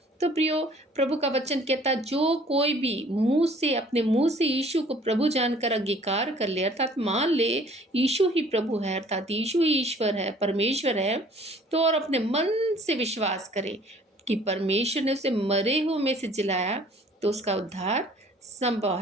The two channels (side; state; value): both; normal; correlation 0.54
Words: तो प्रियो, प्रभु का वचन कहता है, जो कोई भी मुंह से, अपने मुंह से यीशु को प्रभु जानकर अंगीकार कर ले, अर्थात मान ले यीशु ही प्रभु है, अर्थात यीशु ही ईश्वर है, परमेश्वर है, तो और अपने मन से विश्वास करे कि परमेश्वर ने उसे मरे हुए में से जिलाया, तो उसका उद्धार संभव